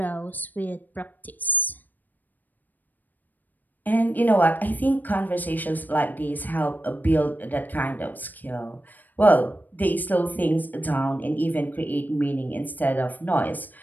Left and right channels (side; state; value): right; late; 0.087 ms